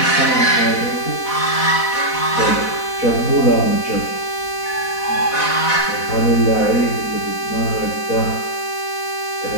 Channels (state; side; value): late; right; 4.1 ms